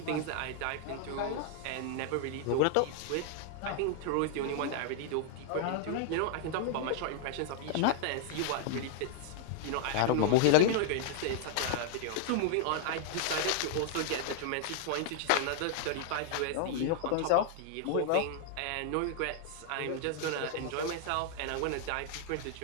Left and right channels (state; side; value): different; both; correlation 0.00